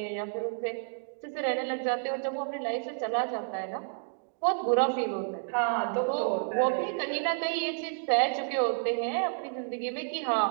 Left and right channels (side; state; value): left; silent; digital silence